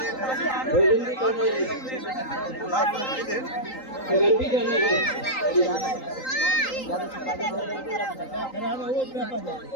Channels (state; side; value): late; right; 3.8 ms